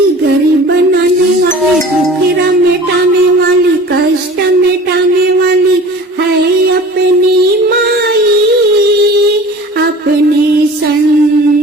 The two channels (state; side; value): normal; both; correlation 0.42